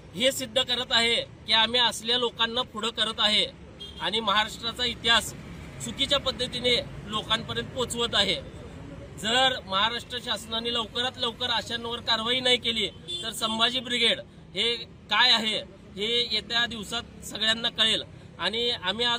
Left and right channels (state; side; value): identical; both; correlation 1.00